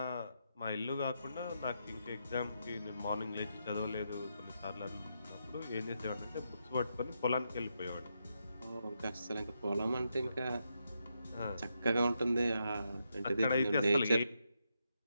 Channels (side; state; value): both; inverted; correlation -0.82